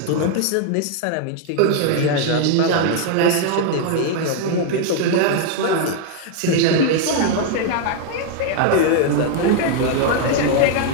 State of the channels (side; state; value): both; different; correlation 0.00